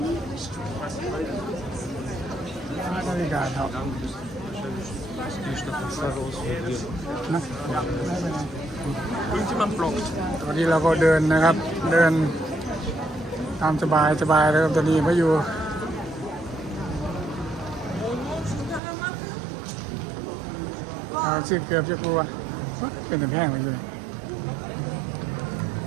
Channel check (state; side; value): drops out; left; at 18.8 s